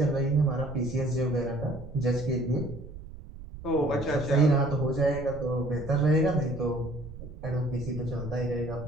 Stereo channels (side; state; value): right; noise; rumble, 13 dB below the sound